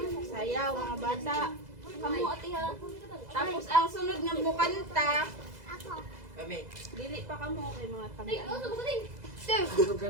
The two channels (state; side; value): late; left; 2.0 ms